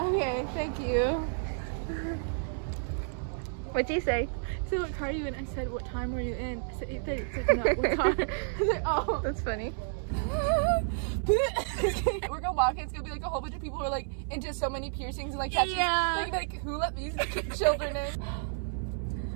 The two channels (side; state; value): left; silent; digital silence